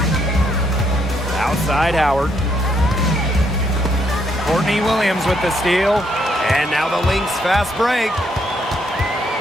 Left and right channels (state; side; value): normal; both; correlation 0.73